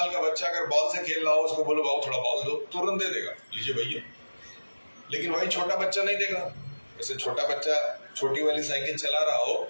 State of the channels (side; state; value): both; inverted; correlation -1.00